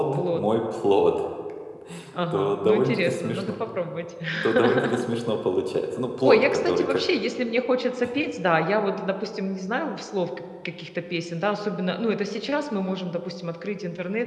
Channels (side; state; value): both; identical; correlation 1.00